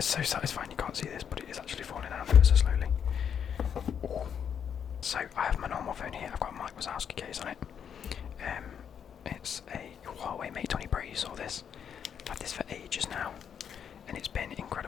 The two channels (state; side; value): quieter; right; 8.0 dB